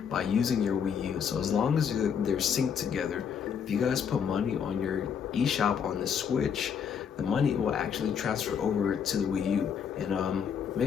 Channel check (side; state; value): right; quieter; 7.4 dB